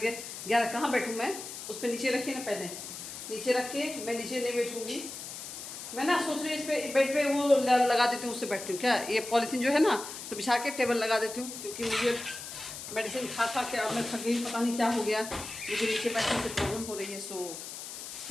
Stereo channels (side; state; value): left; noise; hiss, 10 dB below the sound